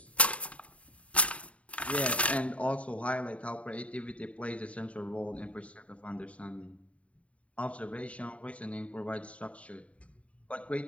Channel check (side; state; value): right; late; 0.064 ms